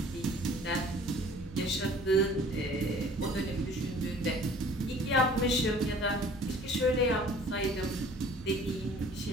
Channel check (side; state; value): both; normal; correlation 0.50